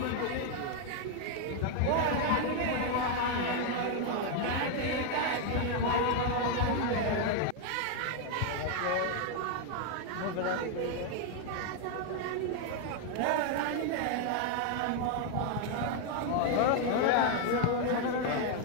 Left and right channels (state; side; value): different; both; correlation 0.01